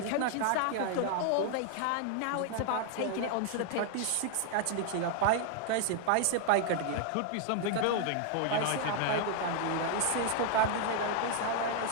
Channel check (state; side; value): different; both; correlation 0.00